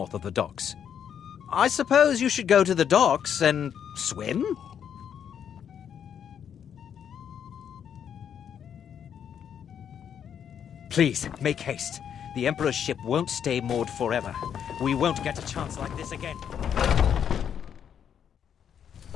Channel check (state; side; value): quieter; right; 8.5 dB